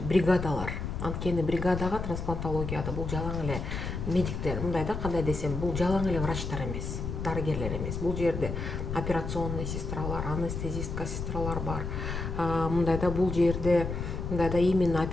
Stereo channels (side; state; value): left; noise; rumble, 4 dB below the sound